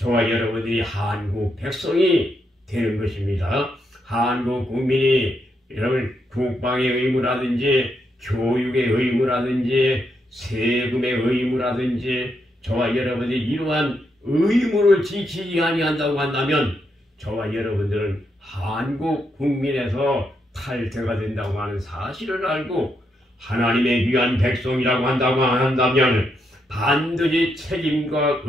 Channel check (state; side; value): normal; both; correlation 0.80